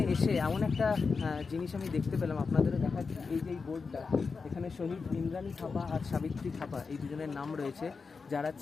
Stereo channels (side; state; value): right; quieter; 4.8 dB